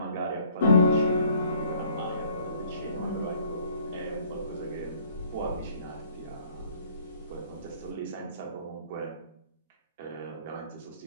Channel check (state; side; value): inverted; both; correlation -0.58